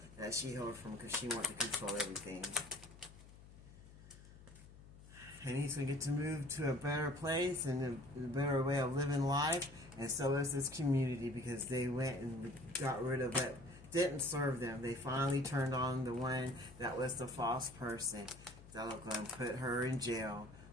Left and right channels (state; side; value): noise; left; hum, 19 dB below the sound